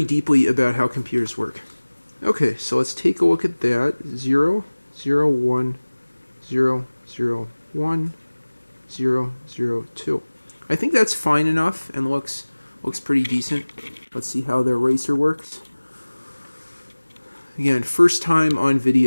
deeply about how computers work. Okay, so let's take a look at that. 0, 0, 1, 0, 0, 1, 0, 0, 2. I think that's fine enough and looks pretty decent. Let's see how the eraser works. Again, first time on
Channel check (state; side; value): inverted; both; correlation -1.00